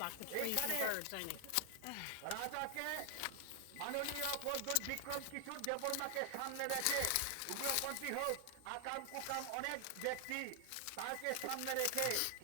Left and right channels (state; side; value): different; both; correlation 0.00